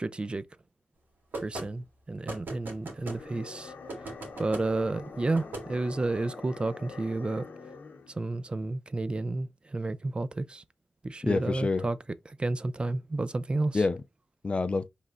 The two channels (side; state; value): both; normal; correlation 0.94